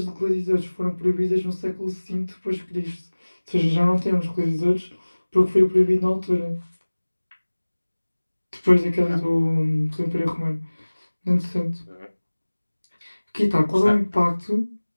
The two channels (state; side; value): inverted; both; correlation -1.00